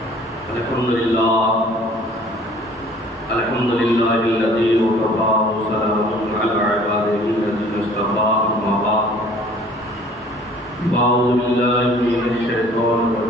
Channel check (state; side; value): normal; both; correlation 0.53